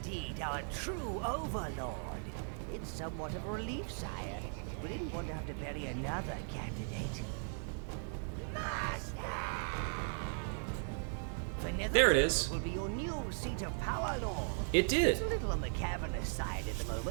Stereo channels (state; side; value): silent; left; 53 dB below the other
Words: our true Overlord. It's somewhat of a relief, sire. We didn't want to have to bury another candidate. Master! The There it is. Will be your new seat of power, Lord. It did. It's a little on the cavernous side at the